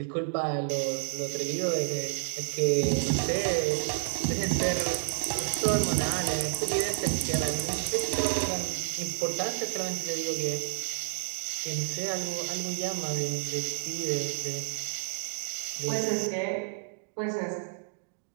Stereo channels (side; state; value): left; silent; digital silence